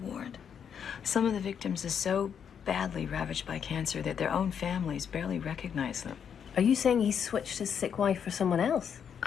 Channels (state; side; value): quieter; right; 7.7 dB